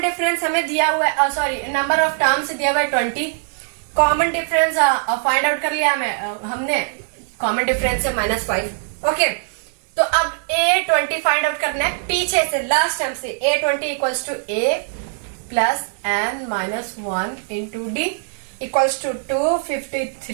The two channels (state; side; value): silent; left; 65 dB below the other